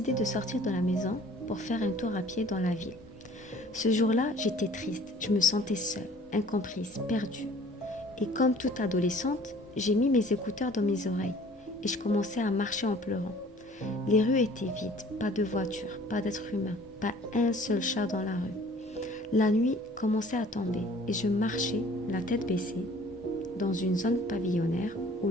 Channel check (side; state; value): both; normal; correlation 0.52